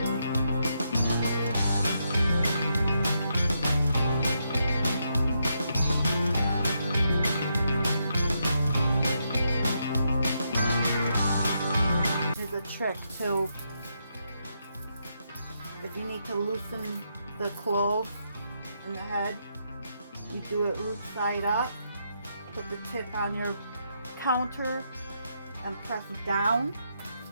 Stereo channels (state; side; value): inverted; both; correlation -0.80